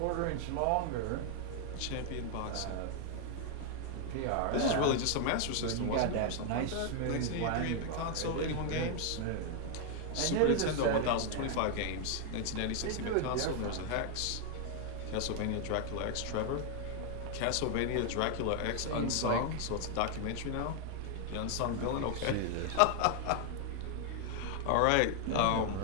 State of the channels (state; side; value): different; both; correlation 0.00